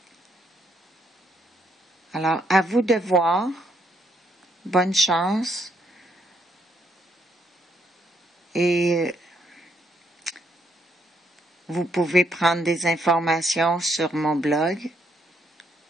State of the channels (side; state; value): both; normal; correlation 0.73